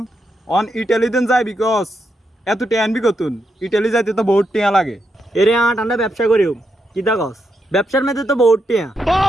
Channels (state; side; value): normal; both; correlation 0.82